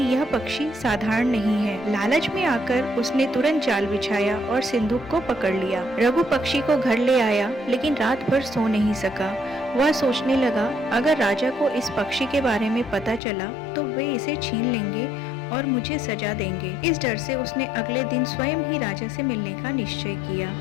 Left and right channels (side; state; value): right; drops out; at 13.2 s